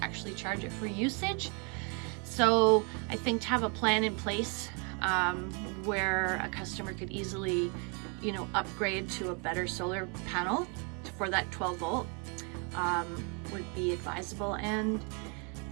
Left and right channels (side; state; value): left; quieter; 35.3 dB